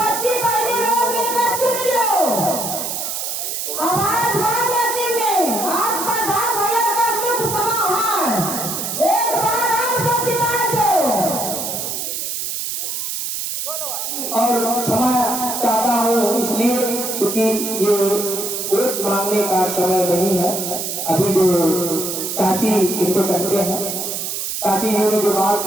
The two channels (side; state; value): right; noise; hiss, 3 dB below the sound